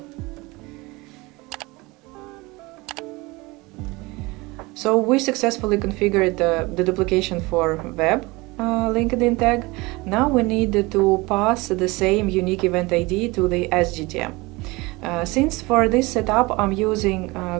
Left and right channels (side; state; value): left; quieter; 23.4 dB